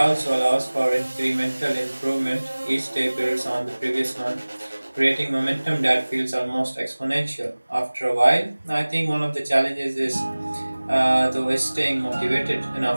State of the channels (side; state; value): both; inverted; correlation -1.00